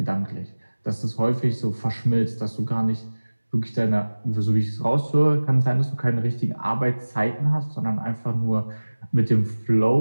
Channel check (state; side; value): inverted; both; correlation -1.00